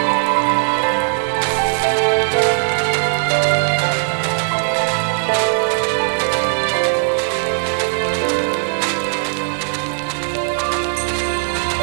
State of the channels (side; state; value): left; silent; digital silence